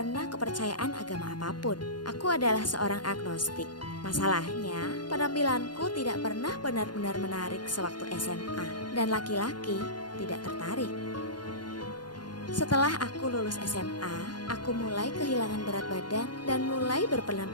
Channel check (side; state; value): right; late; 0.71 ms